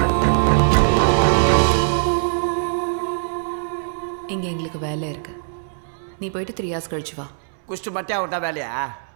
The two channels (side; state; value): left; silent; 65 dB below the other